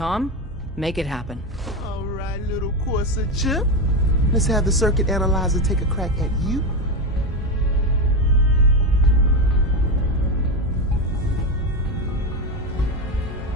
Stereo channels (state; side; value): normal; both; correlation 0.13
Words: make it happen. All right, little courser chip. Let's have the circuit analyzer take a crack at you.